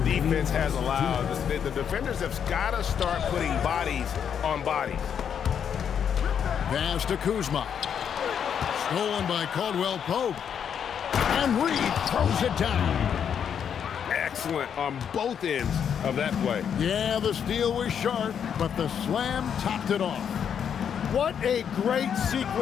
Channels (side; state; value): right; quieter; 8.0 dB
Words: has allowed. The defenders have got to start putting bodies on bodies. Pass to Kuzma. Stolen by Caldwell Pope. And Reed throws it down. Excellent on both ends of that play. Yeah, the steal was sharp, but the slam topped it off. What a great